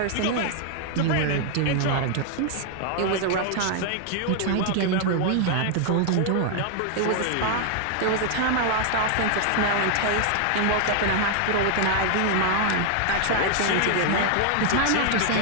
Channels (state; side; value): different; both; correlation 0.00